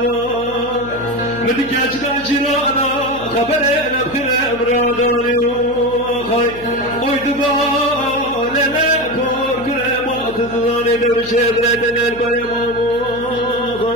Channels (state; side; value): noise; left; hum, 16 dB below the sound